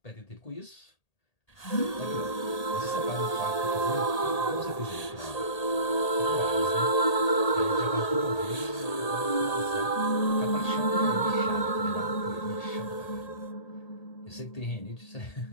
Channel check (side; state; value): right; late; 1.8 ms